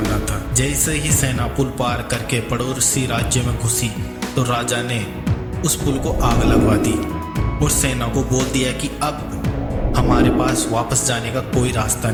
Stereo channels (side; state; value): both; identical; correlation 1.00